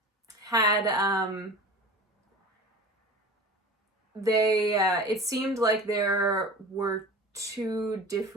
had, it seemed like there were two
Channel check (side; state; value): both; normal; correlation 0.36